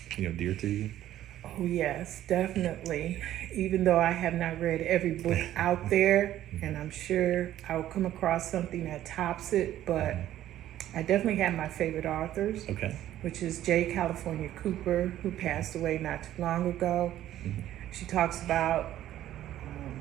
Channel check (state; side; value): quieter; left; 12.8 dB